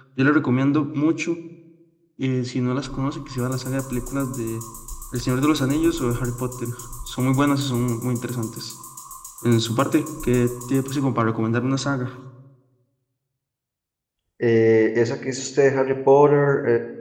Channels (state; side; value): identical; both; correlation 1.00